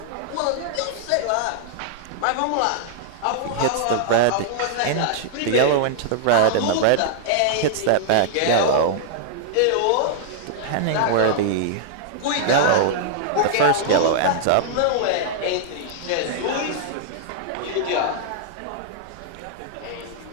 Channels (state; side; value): different; both; correlation -0.01